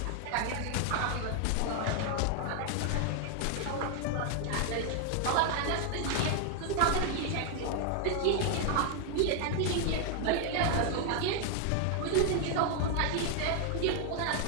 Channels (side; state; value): both; different; correlation 0.00